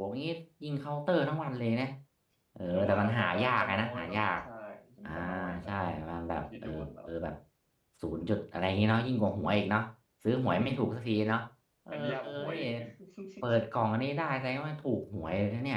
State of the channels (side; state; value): both; identical; correlation 1.00